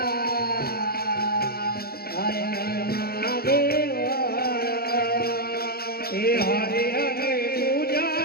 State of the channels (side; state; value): right; late; 0.45 ms